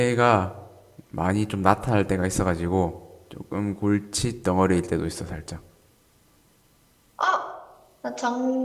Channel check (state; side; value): identical; both; correlation 1.00